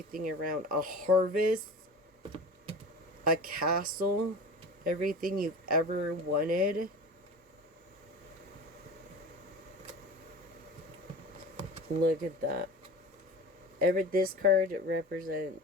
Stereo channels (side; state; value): both; normal; correlation 0.34